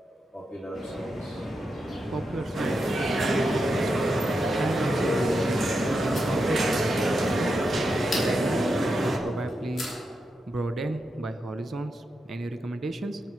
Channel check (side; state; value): both; normal; correlation 0.86